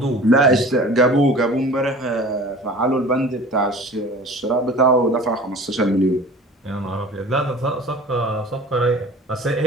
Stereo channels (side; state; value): both; normal; correlation 0.42